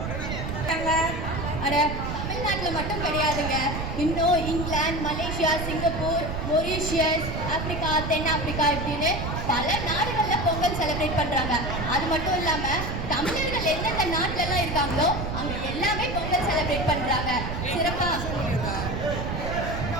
அட தமிழ்நாட்டில் மட்டும் கிடையாதுங்க, இன்னும் England, Malaysia, Singapore, Mauritius, Africa, தென்னாப்பிரிக்கா இப்படின்னு பல நாடுகளில் பொங்கல் செலிப்ரேட் பண்ணுறாங்க. அது மட்டும் இல்லாமல் தமிழர்கள் எந்தெந்த நாட்டிலலாம் இருக்காங்களோ அங்கே எல்லாமே பொங்கல் செலிப்ரேட் பண்ணுறாங்க சிறப்பாக.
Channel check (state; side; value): noise; right; rumble, 4 dB below the sound